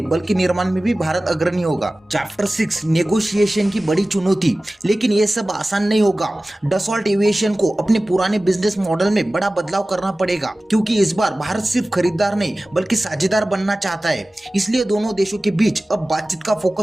बल्कि निर्माण में भी भारत अग्रणी होगा। चैप्टर 6, नेगोशिएशन की बड़ी चुनौती। लेकिन यह सब आसान नहीं होगा। डसॉल्ट एविएशन को अपने पुराने बिजनेस मॉडल में बड़ा बदलाव करना पड़ेगा, क्योंकि इस बार भारत सिर्फ खरीदार नहीं बल्कि साझेदार बनना चाहता है। इसलिए दोनों देशों के बीच अब बातचीत का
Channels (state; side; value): normal; both; correlation 0.97